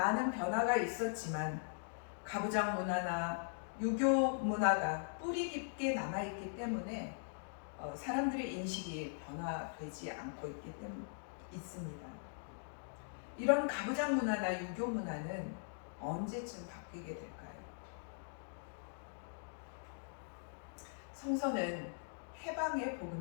변화가 있었지만 가부장 문화나 유교 문화가 뿌리 깊게 남아있기 때문에 사람들의 인식이 변화되지 않고 있습니다. 이런 가부장 문화나 유교 문화는 언제쯤 바뀌게 될까요? 성서는 해방의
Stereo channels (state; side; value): silent; right; digital silence